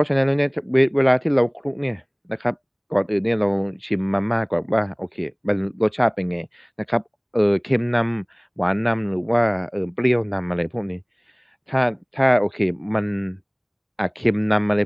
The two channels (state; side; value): identical; both; correlation 1.00